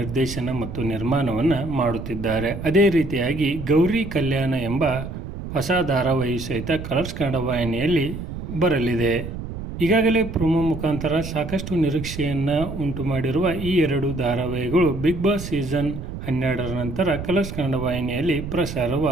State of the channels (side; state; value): right; noise; rumble, 8 dB below the sound